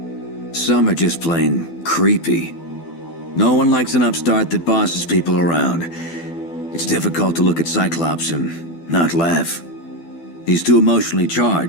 Some are just plain creepy. No one likes an upstart that bosses people around. It's difficult to look at Cyclops and not laugh. He's too emotionally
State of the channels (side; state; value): right; late; 12 ms